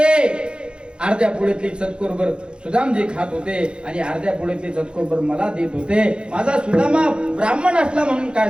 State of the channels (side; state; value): left; late; 0.054 ms